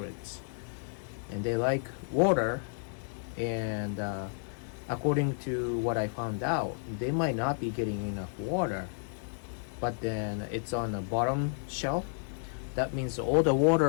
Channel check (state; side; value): silent; right; 57 dB below the other